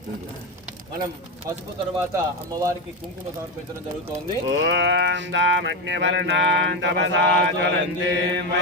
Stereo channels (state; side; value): normal; both; correlation 0.13